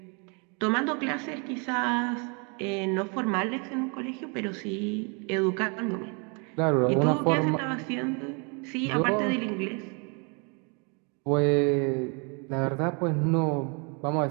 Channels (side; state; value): left; quieter; 34.3 dB